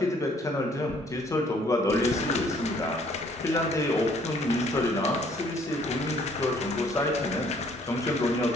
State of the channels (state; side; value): normal; both; correlation 0.62